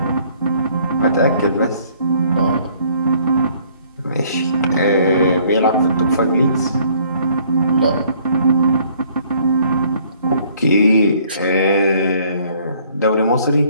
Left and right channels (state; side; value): inverted; both; correlation -0.61